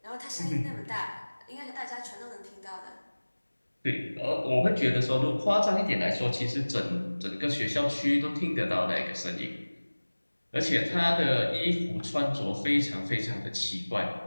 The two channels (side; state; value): both; inverted; correlation -1.00